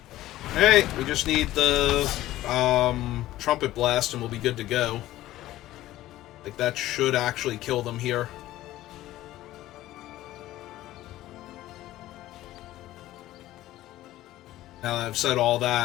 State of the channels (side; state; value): right; quieter; 15.2 dB